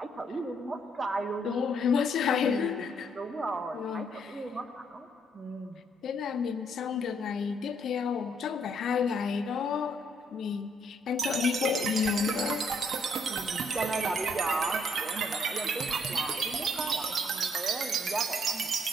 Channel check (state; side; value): normal; both; correlation 0.69